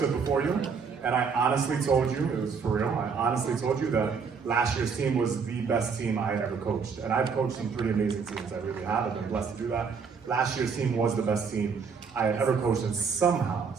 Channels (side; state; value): left; quieter; 5.7 dB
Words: before you. And I honestly told you, it was for real, I honestly told you that last year's team was the best team I had ever coached. And I've coached some pretty amazing teams, I really have. I've been blessed to do that. Last year's team was the best team I had ever coached, and